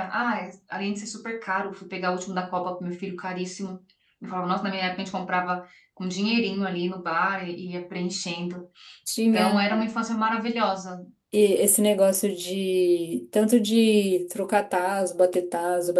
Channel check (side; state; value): both; identical; correlation 1.00